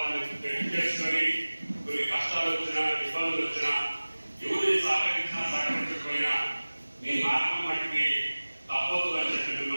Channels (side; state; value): both; inverted; correlation -1.00